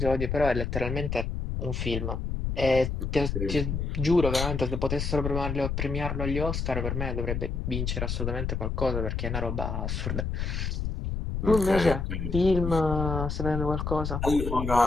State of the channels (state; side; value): noise; left; rumble, 2 dB below the sound